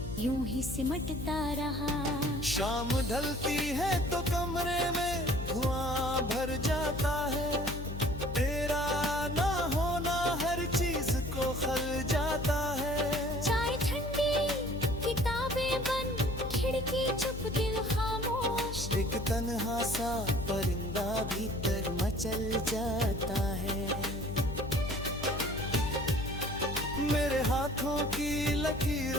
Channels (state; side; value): noise; left; hum, 7 dB below the sound